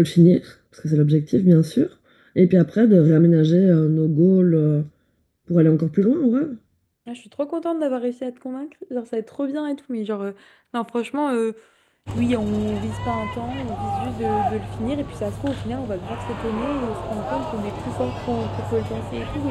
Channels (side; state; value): both; identical; correlation 1.00